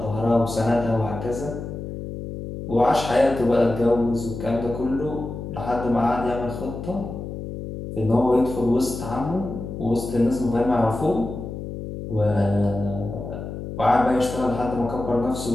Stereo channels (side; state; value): left; noise; hum, 8 dB below the sound